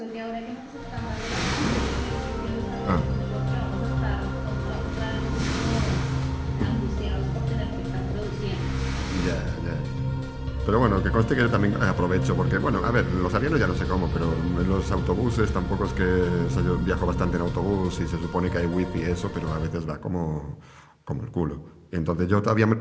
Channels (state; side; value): identical; both; correlation 1.00